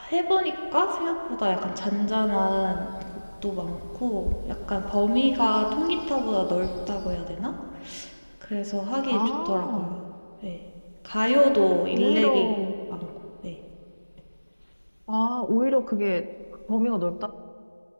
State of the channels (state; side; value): inverted; both; correlation -1.00